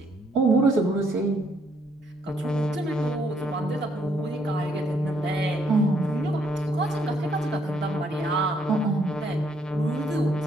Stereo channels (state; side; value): normal; both; correlation 0.70